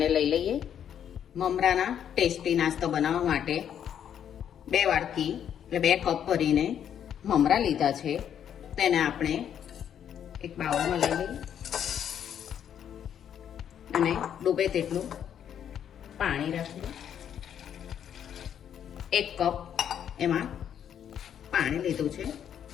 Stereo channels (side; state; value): right; quieter; 9.2 dB